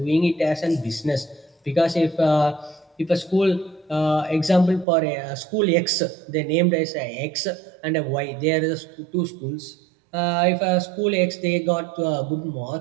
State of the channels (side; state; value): left; drops out; at 4.9 s